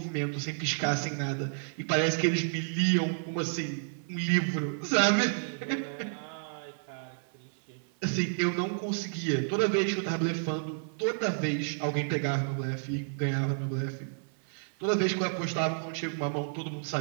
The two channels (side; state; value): left; silent; 57 dB below the other